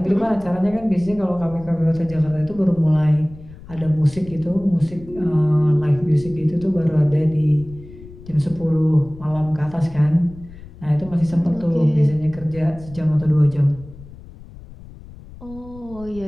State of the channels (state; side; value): noise; left; rumble, 18 dB below the sound